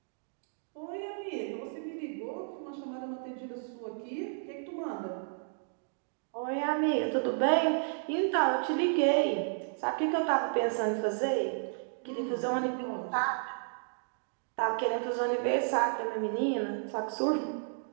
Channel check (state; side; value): silent; left; digital silence